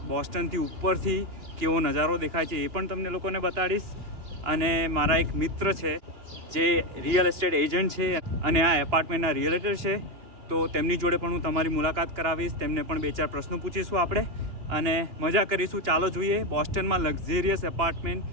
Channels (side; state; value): left; late; 2.9 ms